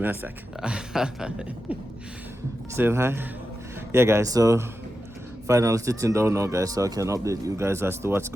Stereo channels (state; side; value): normal; both; correlation 0.90